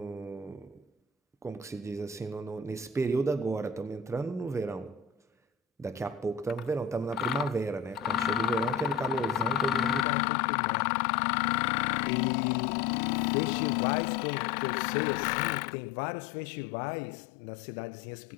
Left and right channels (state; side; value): drops out; right; at 10.1 s